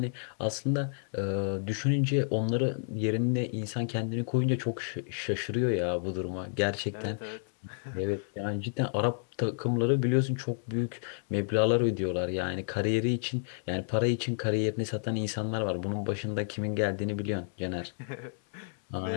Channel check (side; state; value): right; silent; 57 dB below the other